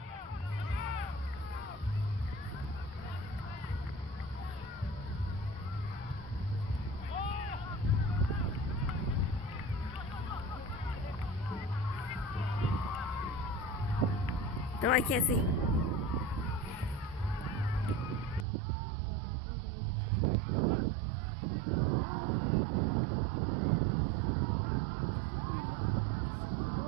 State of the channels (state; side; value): drops out; left; at 18.4 s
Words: No, I can't see.